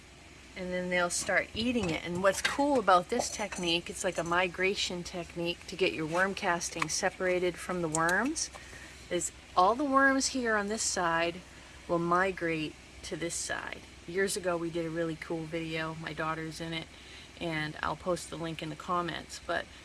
and then they'll start eating it. And what's cool about this technique, it's like a migration technique to get your worm castings separated from the worms, is all the worms here on this side will migrate to this side. Years ago we did a really cool video, my daughter's in it, and I'll post the link in the comments, but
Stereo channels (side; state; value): both; identical; correlation 1.00